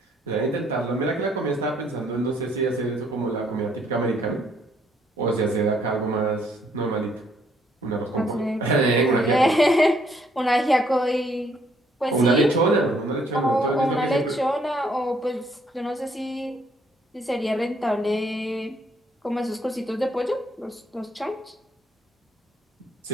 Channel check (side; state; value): both; normal; correlation 0.67